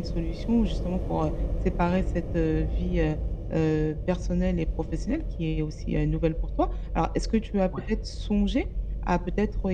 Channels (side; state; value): both; identical; correlation 1.00